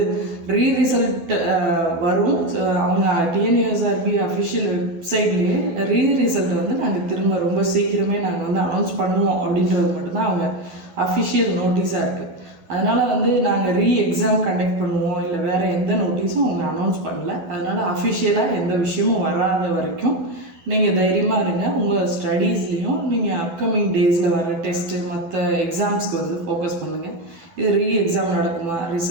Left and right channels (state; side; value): late; left; 12 ms